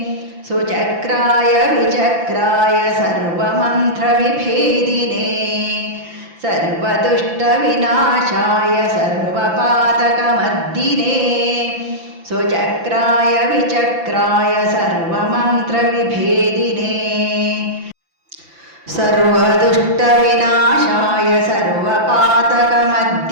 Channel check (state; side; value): late; left; 5.9 ms